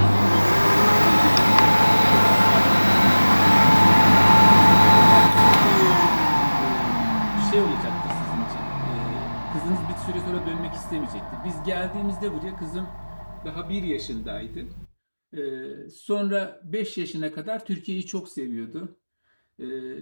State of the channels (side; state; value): both; inverted; correlation -1.00